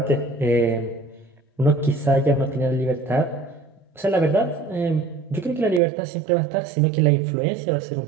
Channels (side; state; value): left; drops out; at 5.8 s